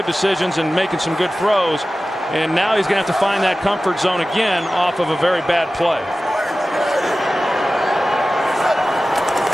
decisions and making some good throws. And now he's going to have to find that comfort zone again off of a very bad play.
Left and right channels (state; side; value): normal; both; correlation 0.95